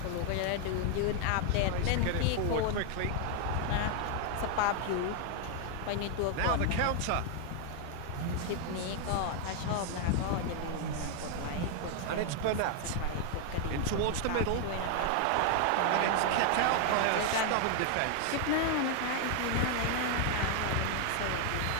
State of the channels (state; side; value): different; both; correlation 0.00